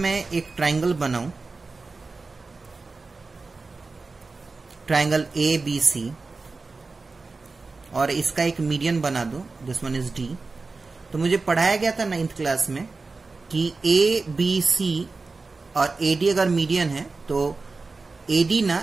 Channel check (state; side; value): quieter; left; 3.9 dB